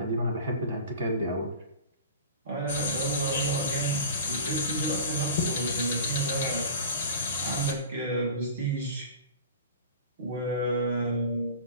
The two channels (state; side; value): inverted; both; correlation -0.37